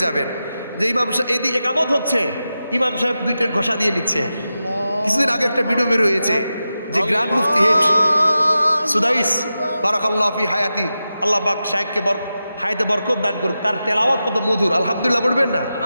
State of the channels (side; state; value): both; inverted; correlation -0.92